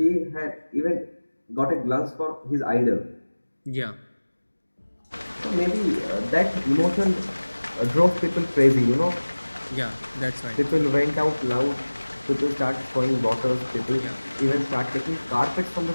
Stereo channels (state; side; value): inverted; both; correlation -1.00